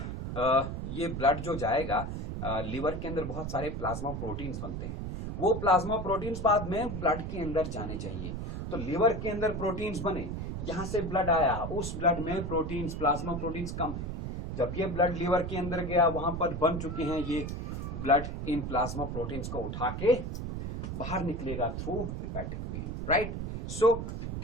ये ब्लड जो जाएगा, लिवर के अंदर बहुत सारे प्लाज्मा प्रोटीन्स बनते हैं. वो प्लाज्मा प्रोटीन्स बाद में ब्लड के अंदर जाने चाहिए. तो लिवर के अंदर प्रोटीन्स बने, यहां से ब्लड आया, उस ब्लड में प्रोटीन्स, प्लाज्मा प्रोटीन्स कम है. जब ये ब्लड लिवर के अंदर गया, वहां पर बन चुके हैं ये ब्लड इन प्लाज्मा प्रोटीन्स को उठा के बाहर निकलेगा थ्रू हेपेटिक वेन, राइट। सो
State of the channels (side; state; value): right; noise; rumble, 5 dB below the sound